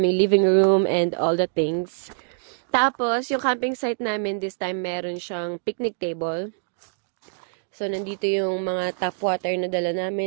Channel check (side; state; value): left; silent; digital silence